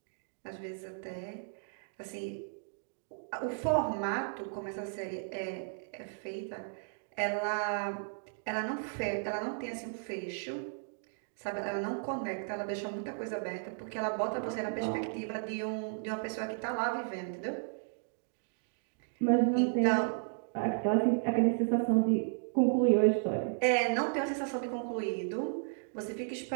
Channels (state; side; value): silent; left; digital silence